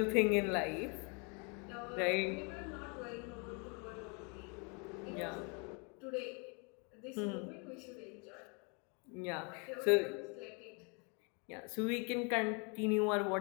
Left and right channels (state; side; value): quieter; right; 34.5 dB